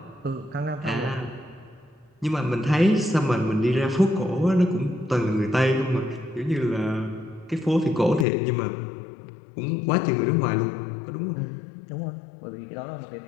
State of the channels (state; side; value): drops out; right; at 8.2 s